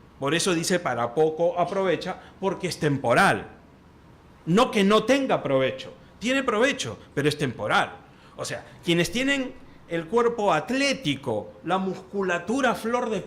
por eso dice para poco aprovecha, porque es temporal. No que no tenga provecho, tiene provecho, pero es temporal. O sea, quienes tienen el cuerpo atlético, la musculatura a flor de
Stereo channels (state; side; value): identical; both; correlation 1.00